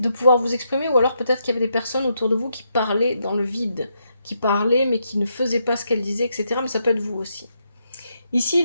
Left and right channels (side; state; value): both; inverted; correlation -0.80